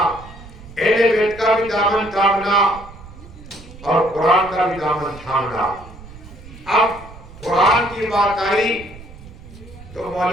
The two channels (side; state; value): right; noise; rumble, 18 dB below the sound